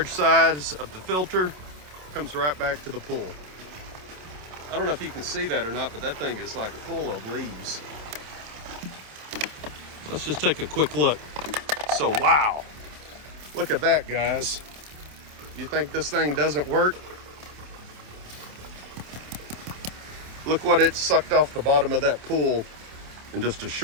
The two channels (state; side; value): late; left; 27 ms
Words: size of the filter comes right back to the pool. I don't know if you can see that or not, but that thing is like full of leaves. Let's just take a quick look. So wow, look at that, guys. You think this thing doesn't work? Look what it sucked off the bottom of that pool in just a